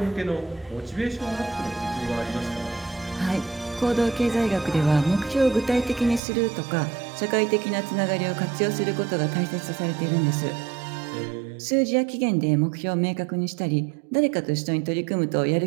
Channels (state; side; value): drops out; left; at 6.2 s